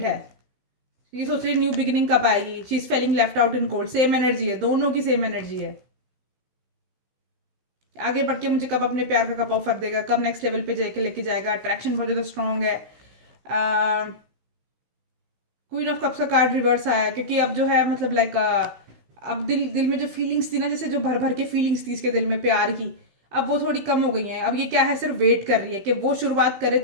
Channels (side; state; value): left; late; 16 ms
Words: है। ये सोच रही है न्यू बिगिनिंग कब आएगी। She is feeling left out in cold. Same energy है, दोनों की सेम एनर्जी है। आगे बढ़ के मुझे कब अपने प्यार का कप ऑफर देगा, कब नेक्स्ट लेवल पे जाके लेके जाएगा। अट्रैक्शन बहुत ज़्यादा स्ट्रॉन्ग है। क्वीन ऑफ कप्स का कार्ड रिवर्स आया है, क्योंकि अब जो है मतलब लाइक अब दिल में जो फीलिंग्स थी ना, जैसे जो भर भर के फीलिंग्स थी इसके दिल में प्यार की, अब वो थोड़ी कम हो गई हैं। अब ये क्या है, सिर्फ वेट कर रही है कि वो शुरुआत करे